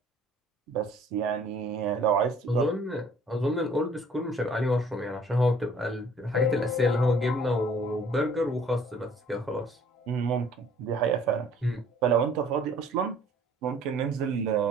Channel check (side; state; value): both; normal; correlation 0.55